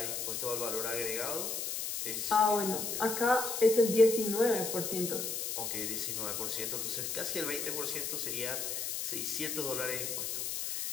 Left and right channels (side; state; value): left; noise; hiss, 2 dB below the sound